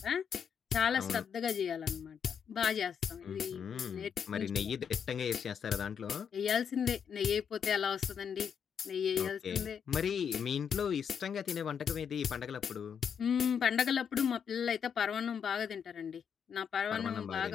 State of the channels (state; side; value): quieter; right; 7.4 dB